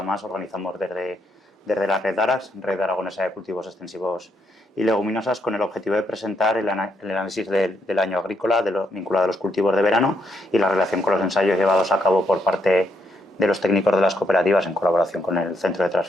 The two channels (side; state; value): both; normal; correlation 0.76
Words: más organizamos desde la Red Arax, Red Aragonesa de Cultivos Extensivos y Leguminosas, con el objetivo de presentar el análisis del año agrícola vinculado a los cultivos de verano y la relación con los ensayos llevados a cabo por parte de los técnicos de las cooperativas en colaboración con el Centro de